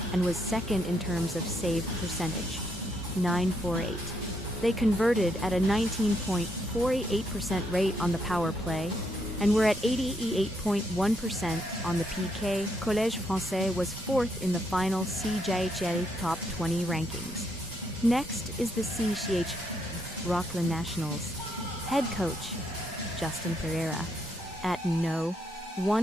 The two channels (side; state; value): both; normal; correlation 0.76